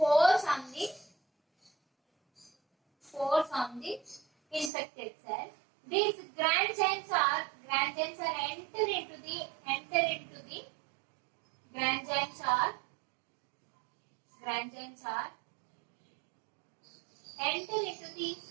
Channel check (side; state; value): left; drops out; at 4.7 s